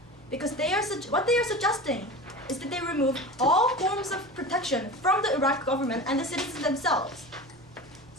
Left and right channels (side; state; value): both; normal; correlation 0.32